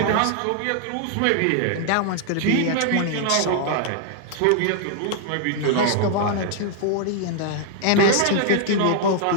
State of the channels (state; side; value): different; both; correlation 0.00